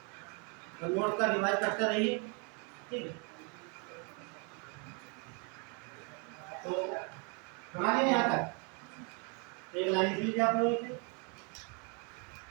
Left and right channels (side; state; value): left; quieter; 35.3 dB